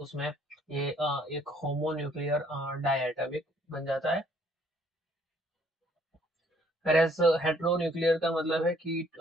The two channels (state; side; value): normal; both; correlation 0.63